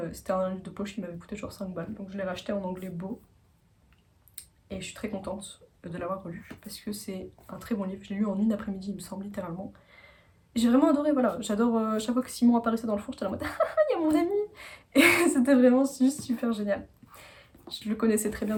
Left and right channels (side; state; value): both; identical; correlation 1.00